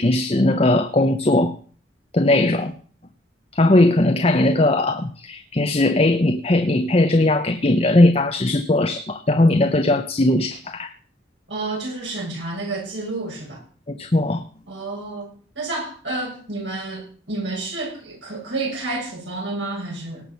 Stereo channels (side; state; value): both; normal; correlation 0.62